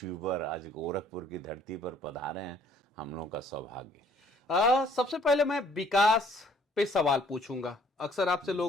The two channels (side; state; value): both; normal; correlation 0.59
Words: आज गोरखपुर की धरती पर पधारे हैं। हम लोगों का सौभाग्य। सबसे पहले मैं विकास पे सवाल पूछूंगा। अक्सर आपसे